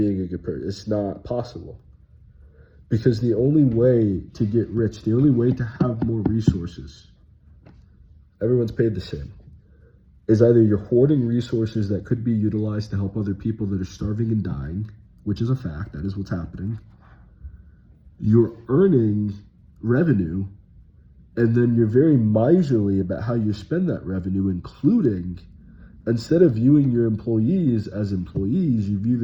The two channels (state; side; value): identical; both; correlation 1.00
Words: a good person. It's not possible. Because the only way to get rich, the only way to have more resources, everyone's paid the same, is either you're hoarding resources that could be utilized to help other people that are starving and dying, which is a fact, that is what's happening. You're earning revenue, and then you're very miserly about how you spend that revenue, including, instead of viewing your employees as employees, you view